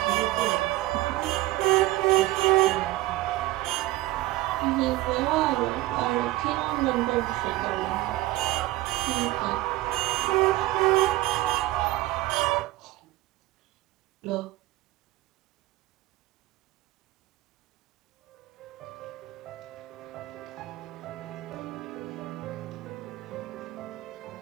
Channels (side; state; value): left; quieter; 17.7 dB